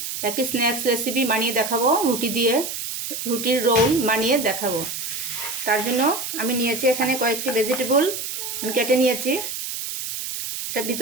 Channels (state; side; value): noise; right; hiss, 5 dB below the sound